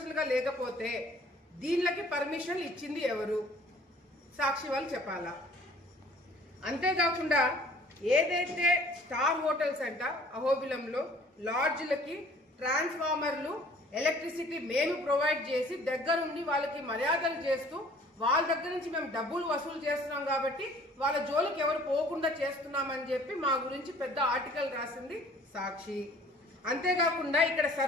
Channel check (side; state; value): both; normal; correlation 0.53